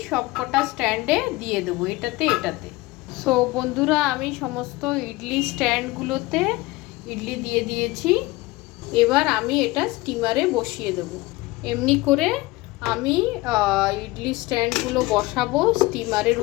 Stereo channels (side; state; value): right; quieter; 21.1 dB